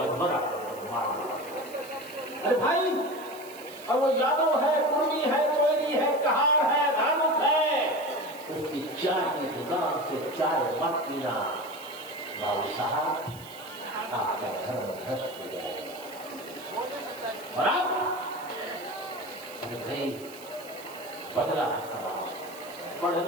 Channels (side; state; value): right; noise; hiss, 19 dB below the sound